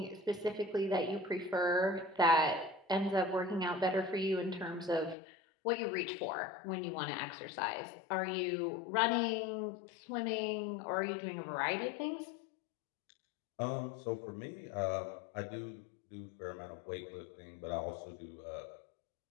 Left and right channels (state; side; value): drops out; right; at 5.2 s